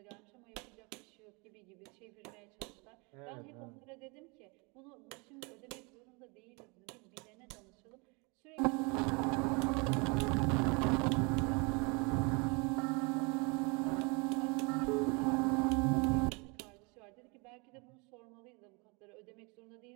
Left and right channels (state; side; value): quieter; left; 30.3 dB